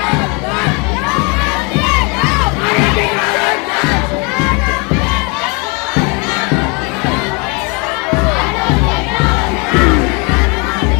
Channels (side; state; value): right; quieter; 31.1 dB